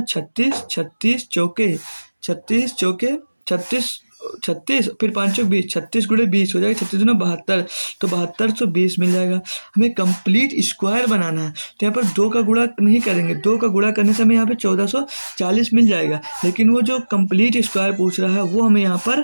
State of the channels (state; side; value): inverted; both; correlation -1.00